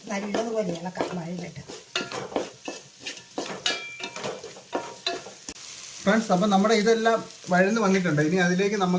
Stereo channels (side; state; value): both; identical; correlation 1.00